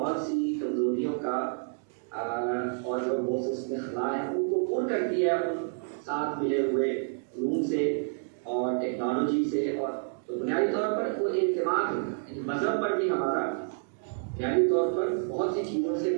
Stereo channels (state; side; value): silent; left; digital silence